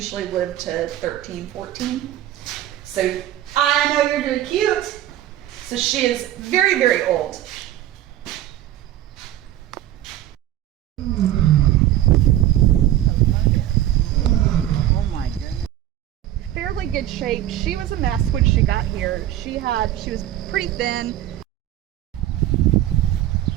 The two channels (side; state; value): left; quieter; 13.0 dB